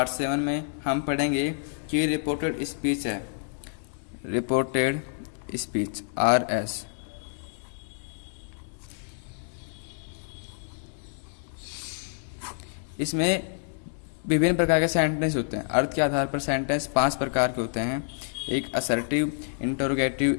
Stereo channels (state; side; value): silent; right; 59 dB below the other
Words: 7 में हम पढ़ेंगे कि रिपोर्टेड स्पीच है, रिपोर्टेड स्पीच RS। इसमें विभिन्न प्रकार के सेंटेंस होते हैं। अर्थ के आधार पर सेंटेंस 5 प्रकार के होते हैं। एक assertive, interrogative,